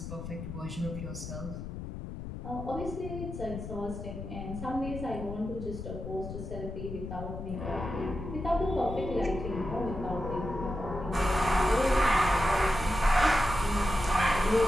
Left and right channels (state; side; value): noise; left; rumble, 8 dB below the sound